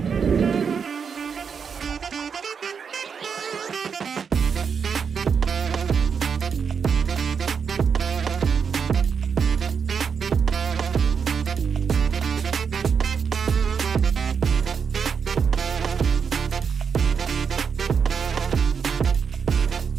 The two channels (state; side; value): quieter; left; 6.4 dB